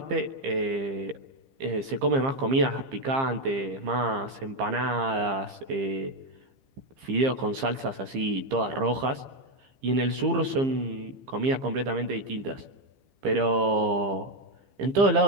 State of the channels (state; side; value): late; left; 15 ms